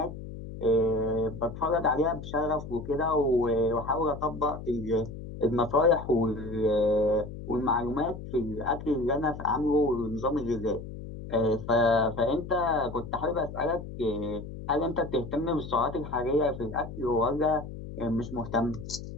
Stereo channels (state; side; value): noise; left; hum, 11 dB below the sound